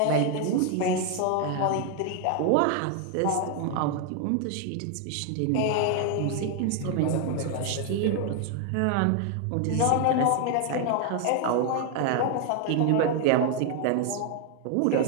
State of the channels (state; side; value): different; both; correlation 0.00